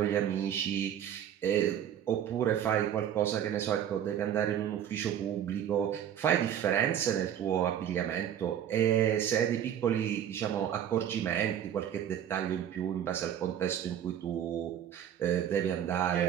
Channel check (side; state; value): left; quieter; 9.8 dB